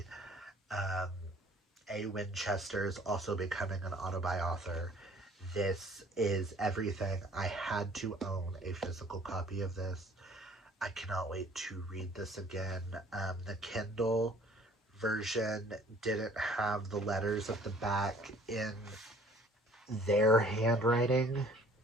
A. Winchester is also becoming an author. This is everything. I had to own a physical copy of this. I cannot wait to read this again. The Kindle version didn't have the letters at the back in their handwriting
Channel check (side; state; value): both; normal; correlation 0.54